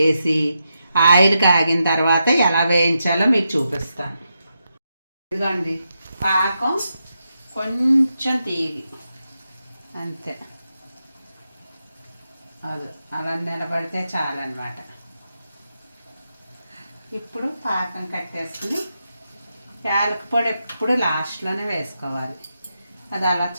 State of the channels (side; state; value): both; inverted; correlation -0.86